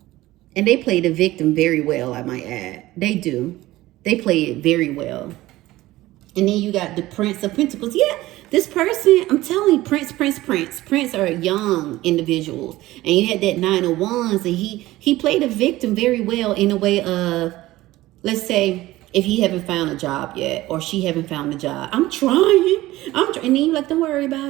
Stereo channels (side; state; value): left; quieter; 17.2 dB